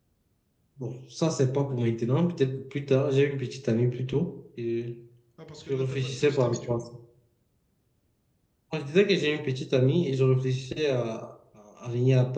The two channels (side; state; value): both; identical; correlation 1.00